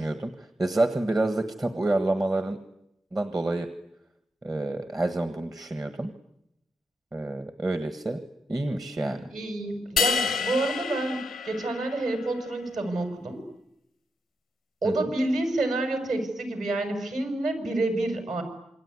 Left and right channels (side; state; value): both; normal; correlation 0.85